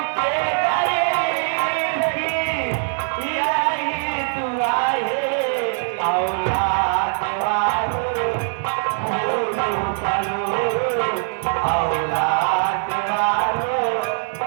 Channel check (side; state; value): left; silent; 58 dB below the other